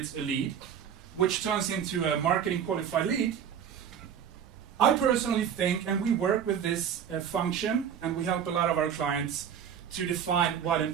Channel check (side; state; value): left; quieter; 8.4 dB